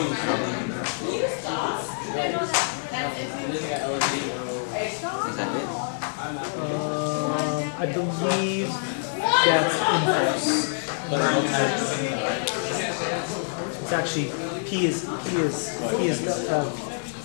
is that it? I believe that's inverse. It's actually P is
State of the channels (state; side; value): silent; right; digital silence